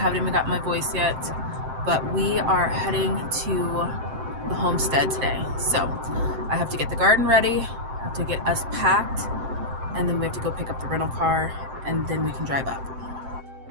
even got my voice yet, but we are heading to the homestead today. So I have to get the garden ready, I have to get us packed, and then we have to go pick up the rental car, and then we can drive up.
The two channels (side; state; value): left; late; 7.7 ms